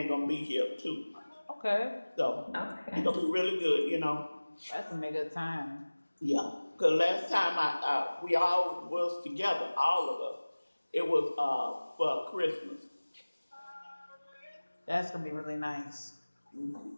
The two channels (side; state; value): both; inverted; correlation -1.00